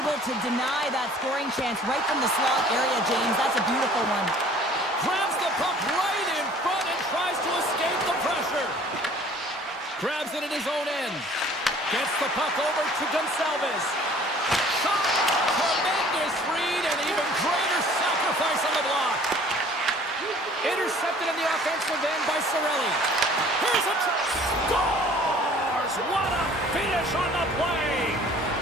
able to deny that scoring chance right from the slot area, James. That's a beautiful one. Grabs the puck right in front and tries to escape the pressure. Grabs it at his own end. Gets the puck over to Gonsalves. Shot! Tremendous read and even greater sacrifice on the block. Intercepted in the offensive end by Cirelli. Here's a scores! What a finish on the play!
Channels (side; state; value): both; normal; correlation 0.52